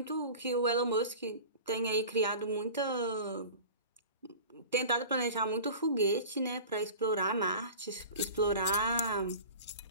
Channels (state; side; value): inverted; both; correlation -0.38